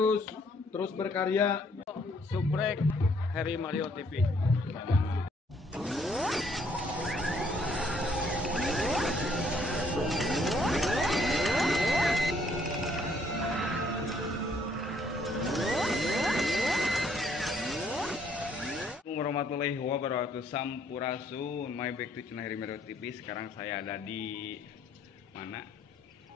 berkarya. Subrek Harry Mario TV. Warahmatullahi wabarakatuh. Sampurasun. My back to channel Harry Mario TV. Sekarang saya ada di mana?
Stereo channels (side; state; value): both; normal; correlation 0.66